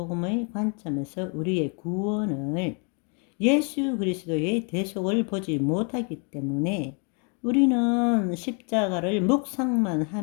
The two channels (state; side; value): quieter; right; 37.4 dB